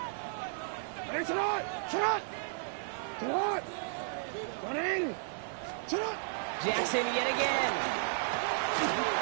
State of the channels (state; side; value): silent; left; 55 dB below the other